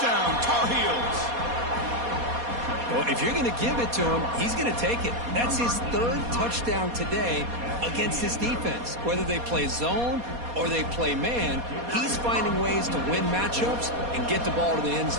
Tar Heels! Well, if you're going to give it to him, he's going to take it. That's his third touchdown today against this defense. Whether they play zone or they play man, he's finding ways to win matchups and get the ball to the end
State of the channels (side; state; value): left; late; 4.2 ms